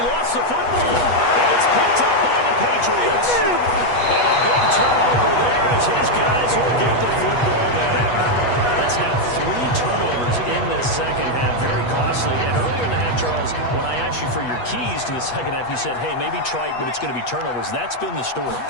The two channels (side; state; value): right; late; 8.2 ms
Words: lost the football. And it's picked up by the Patriots. And a big turnover there as his guys will get the football back. That's now 3 turnovers in this second half. Very costly. And earlier in the half, Charles, when I asked you for your keys to the second half, you said, hey, maybe try it, but it's going to be turnovers. That's been the story.